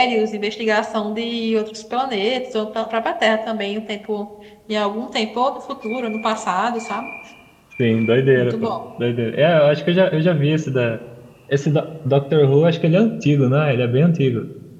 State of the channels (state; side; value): identical; both; correlation 1.00